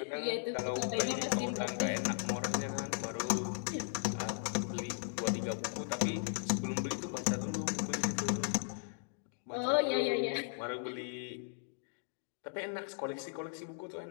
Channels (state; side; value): silent; right; digital silence